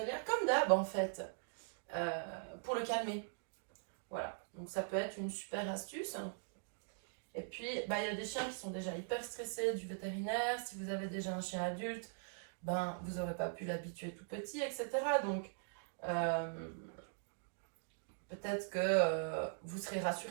comme d'hab en fait, pour le calmer. Voilà, donc ça peut être une super astuce. Et puis, il y a des chiens qui sont déjà hyper stressés du vétérinaire. Si vous avez déjà un chien adulte, vous n'aurez pas pu l'habituer tout petit, etc. Donc, peut-être que vous serez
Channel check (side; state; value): left; silent; digital silence